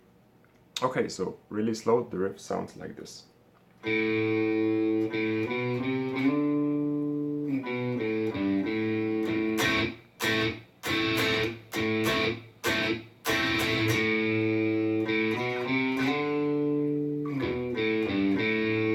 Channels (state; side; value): identical; both; correlation 1.00